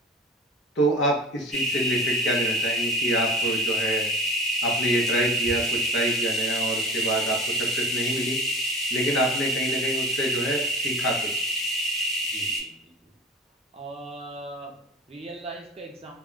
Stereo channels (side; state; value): both; normal; correlation 0.36